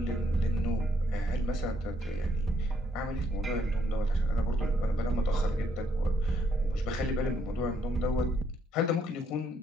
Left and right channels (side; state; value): both; normal; correlation 0.72